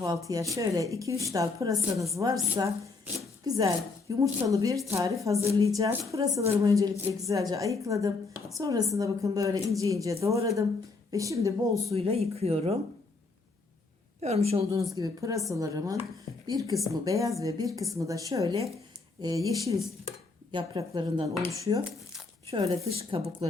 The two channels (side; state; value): right; quieter; 3.9 dB